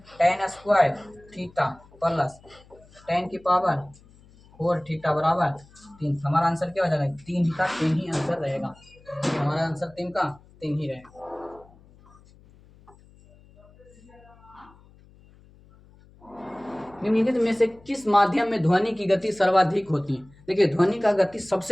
tan square theta plus tan की पावर 4 थीटा बराबर 3। हमारा आंसर क्या हो जाएगा? 3 का 3 ही आंसर रहेगा। हमारा आंसर 3 का 3 ही रहेगा। निम्नलिखित में से किस माध्यम में ध्वनि की गति सर्वाधिक होती है? देखिए ध्वनि का गति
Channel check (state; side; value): noise; left; hum, 26 dB below the sound